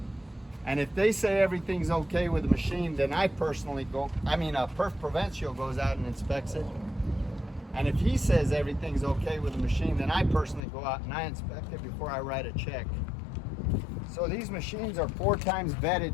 And if they say everything's okay with the machine, then I personally Per Provencio goes out and inspects it. And if he says everything's okay with the machine, then I personally go out and I inspect it before I write a check. So these machines are 4 times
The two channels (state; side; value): drops out; right; at 10.6 s